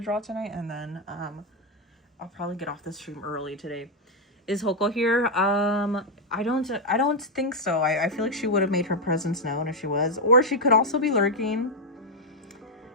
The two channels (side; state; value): both; normal; correlation 0.01